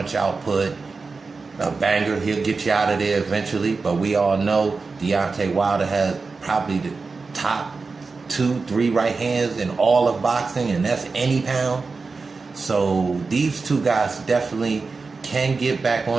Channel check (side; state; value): left; quieter; 4.3 dB